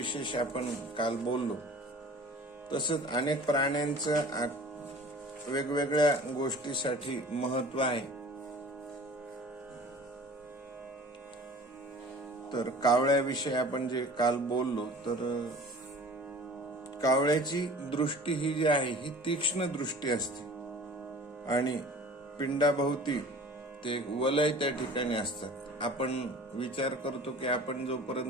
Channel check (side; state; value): both; normal; correlation 0.44